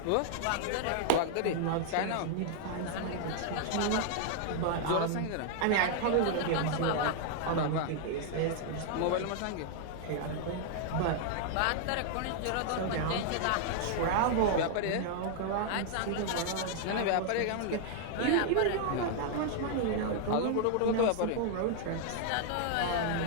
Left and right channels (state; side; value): different; both; correlation 0.00